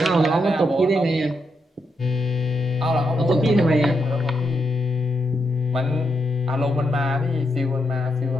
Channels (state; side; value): normal; both; correlation 0.82